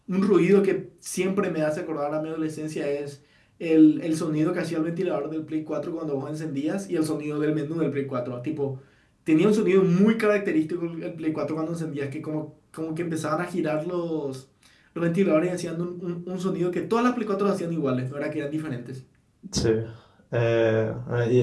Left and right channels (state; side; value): identical; both; correlation 1.00